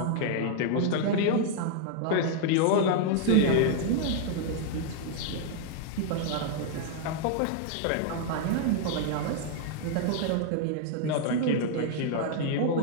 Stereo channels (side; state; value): both; different; correlation 0.00